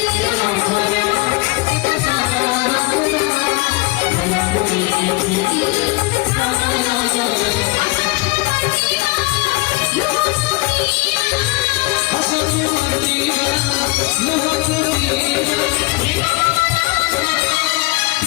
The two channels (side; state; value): right; quieter; 23.6 dB